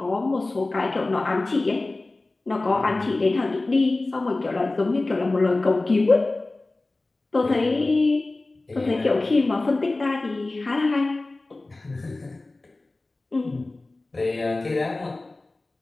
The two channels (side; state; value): right; quieter; 3.1 dB